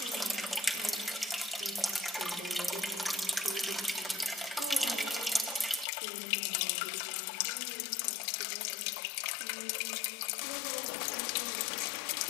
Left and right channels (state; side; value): drops out; right; at 5.9 s